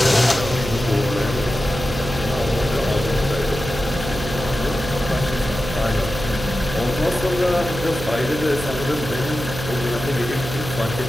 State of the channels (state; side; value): noise; right; hum, 8 dB below the sound